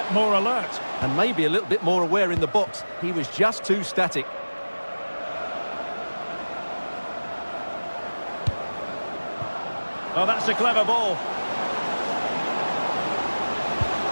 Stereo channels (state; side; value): inverted; both; correlation -1.00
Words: more alert. And maybe a little bit more aware in the box. He was just too static. Oh, that's a clever ball.